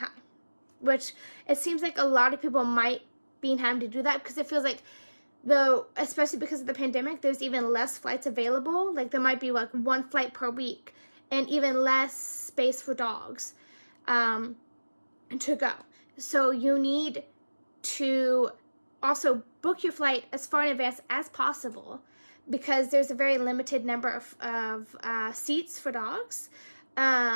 which it seems like a lot of people might be having to do that, because it feels like, though, especially because of the pandemic, there's even less flights available. Like, there might be like one flight per week, and even less space for dogs to go. So you need to also book your flight as far in advance as possible, because there's a very limited number of seats for dogs.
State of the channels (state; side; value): inverted; both; correlation -1.00